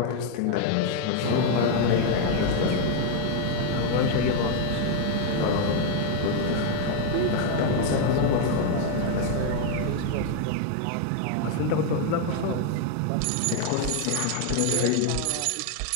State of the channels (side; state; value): both; different; correlation 0.00